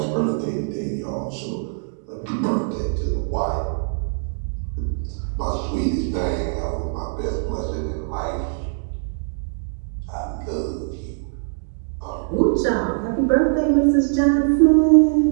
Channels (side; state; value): left; silent; digital silence